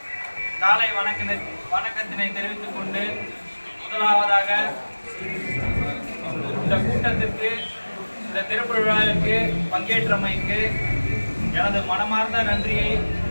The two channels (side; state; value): both; inverted; correlation -1.00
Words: காலை வணக்கத்தினை தெரிவித்துக் கொண்டு, முதலாவதாக இந்த கூட்டத்திற்கு, இந்த திறப்பு விழாவிற்கு பங்கேற்றமைக்கு எனது மனமார்ந்த நன்றியை